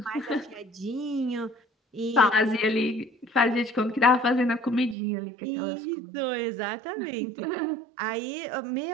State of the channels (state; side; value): drops out; left; at 5.0 s